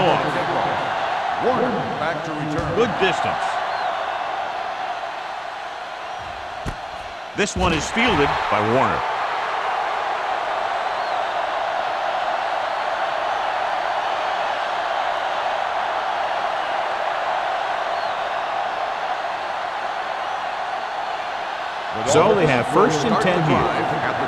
off. Warner back to return. Good distance. This one is fielded by Warner. So they have first and 10 here. At the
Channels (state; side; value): identical; both; correlation 1.00